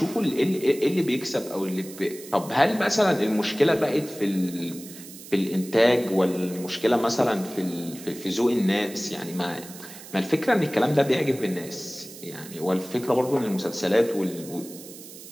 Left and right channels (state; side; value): noise; right; hiss, 16 dB below the sound